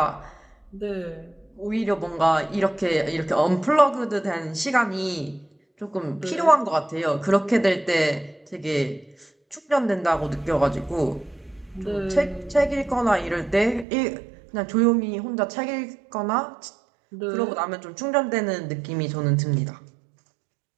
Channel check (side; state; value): left; drops out; at 13.9 s